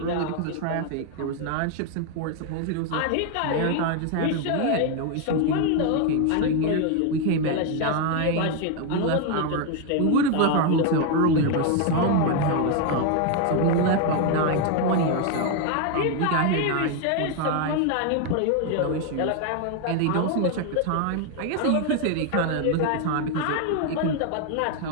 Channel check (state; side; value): different; both; correlation 0.01